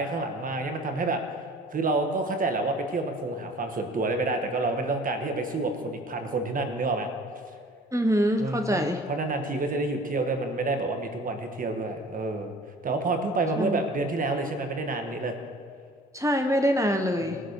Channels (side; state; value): both; normal; correlation 0.48